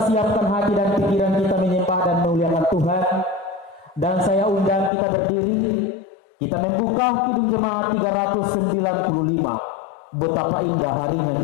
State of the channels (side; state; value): right; drops out; at 4.9 s